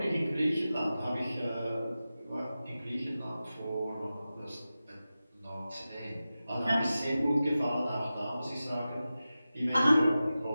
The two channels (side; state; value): both; inverted; correlation -0.94